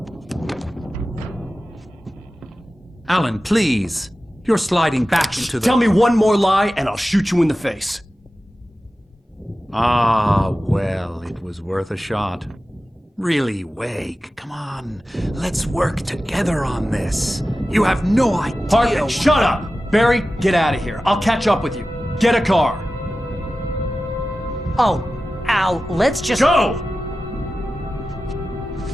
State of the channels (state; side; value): normal; both; correlation 0.94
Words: Alan, please. You're sliding back into the... Tell me one more lie and I'll shoot you in the face. Ah, well, it was worth a shot. Really, Wake, come on. Let's work together on this. You have no idea... Hartman, shut up! Barry, get out of here. I'll catch up with you. Get a car. Oh, Al, let's just... Go!